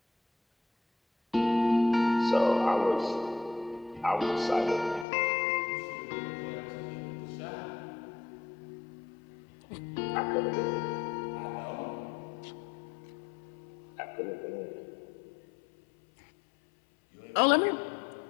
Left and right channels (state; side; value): drops out; right; at 5.1 s